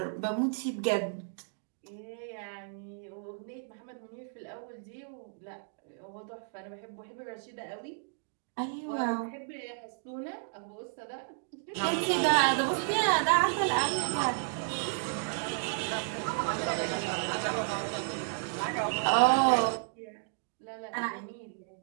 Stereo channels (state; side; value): silent; left; digital silence